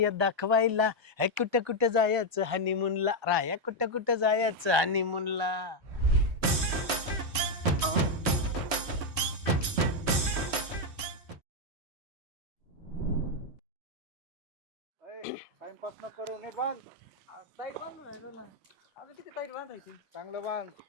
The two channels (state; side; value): late; left; 3.0 ms